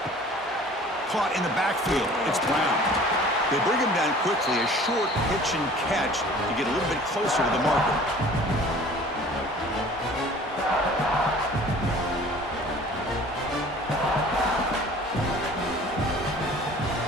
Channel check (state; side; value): normal; both; correlation 0.47